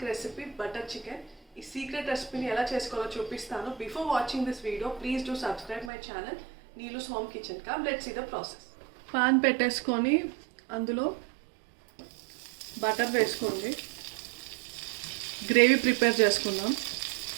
recipe butter chicken. ఈ సీక్రెట్ రెసిపీని ఎలా చేసుకోవాలో చూపిస్తాను. Before watching this video please do subscribe my channel Neelu's home kitchen. Come let's see the process. Pan పెట్టేసుకొని అందులో బటర్ వేసుకోండి. గ్రేవీ ప్రిపేర్ చేసుకుందాం.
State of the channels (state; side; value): drops out; left; at 5.9 s